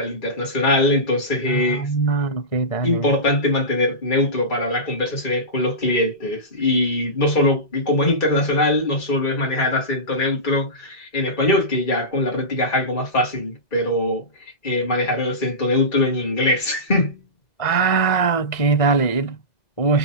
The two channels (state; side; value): late; right; 2.0 ms